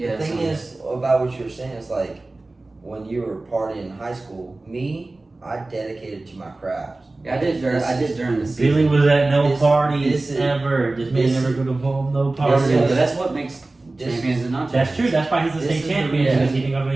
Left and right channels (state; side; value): quieter; left; 3.1 dB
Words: The thing is about what you were saying is when you were partying in high school, I dedicated to my craft. Yeah, I did during the season. Billy was at no This- parties this is- ever. This man this- never go to home, no Yeah, parties. but that's what makes champions and not That's champions. true. That's why he's the This state is the champion reason. because he didn't go to